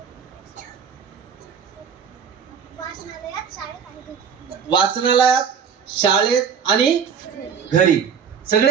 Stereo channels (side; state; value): left; quieter; 7.0 dB